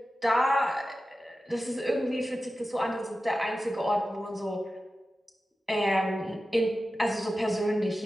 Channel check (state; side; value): normal; both; correlation 0.93